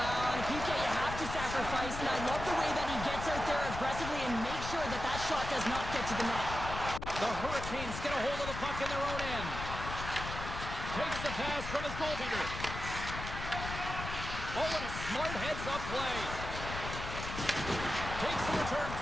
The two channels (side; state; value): left; noise; rumble, 7 dB below the sound